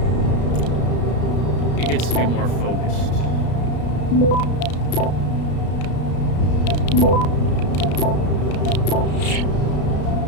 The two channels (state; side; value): late; right; 33 ms